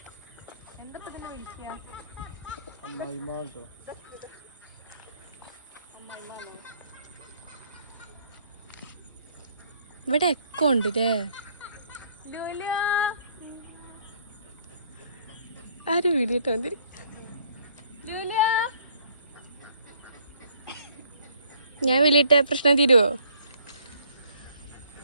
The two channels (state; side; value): inverted; both; correlation -0.63